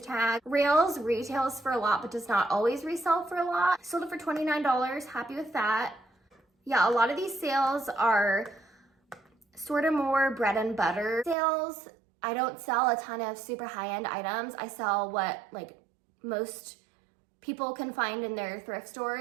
tag. Rails retails for a lot but does not always resell for a lot. Sold it for $29. Happy with that. Yeah, a lot of these sales are sort of more bread and butter sales. I don't sell a ton of super high-end items. I sell what like most people can find in their thrift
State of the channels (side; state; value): left; drops out; at 11.4 s